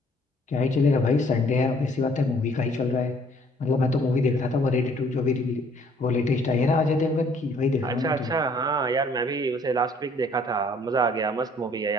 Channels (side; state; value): both; normal; correlation 0.60